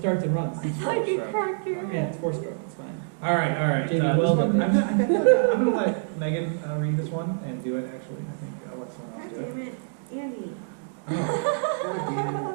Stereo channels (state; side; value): silent; left; digital silence